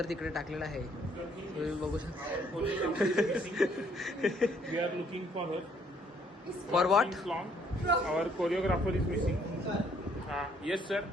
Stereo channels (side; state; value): both; normal; correlation 0.65